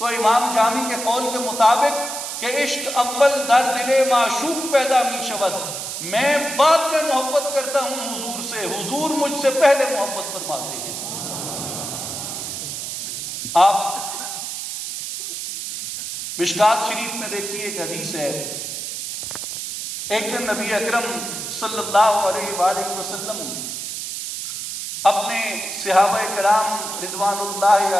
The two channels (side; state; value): right; noise; hiss, 6 dB below the sound